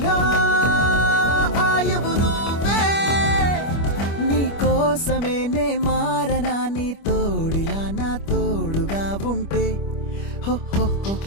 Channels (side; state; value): right; late; 25 ms